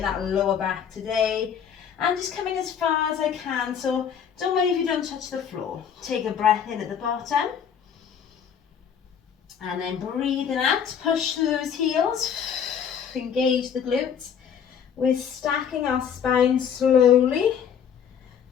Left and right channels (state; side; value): quieter; right; 7.9 dB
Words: that lower back today, and just coming as far as I can. So don't worry if you don't touch the floor. Take a breath in at the bottom, and then breathing out, push through those heels, engage the glutes. We're stacking our spine slowly,